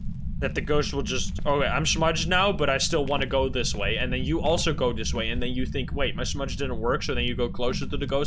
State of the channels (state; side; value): identical; both; correlation 1.00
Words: ghost will just, okay, I'm smudged now, but I still want to go this way. And then you also go this way, and then you think, wait, my smudge didn't work, so then you go closer to the